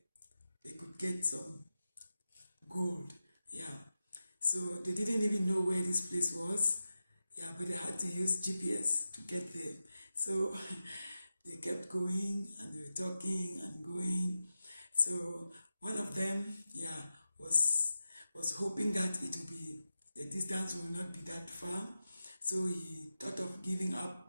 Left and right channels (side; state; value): both; inverted; correlation -0.92